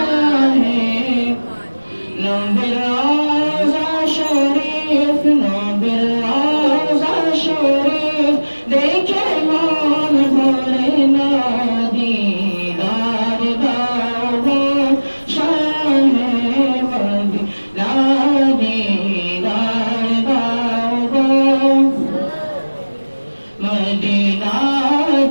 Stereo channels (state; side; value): inverted; both; correlation -1.00